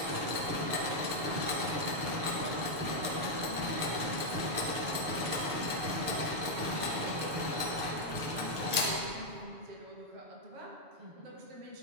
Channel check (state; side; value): late; left; 7.1 ms